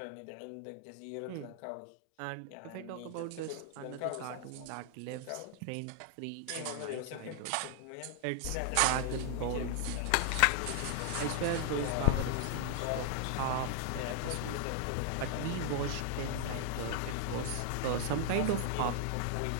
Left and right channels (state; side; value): different; both; correlation 0.00